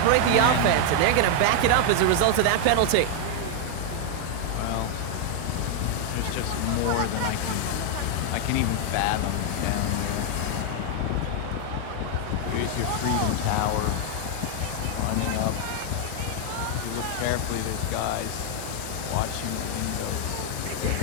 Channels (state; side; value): different; both; correlation 0.00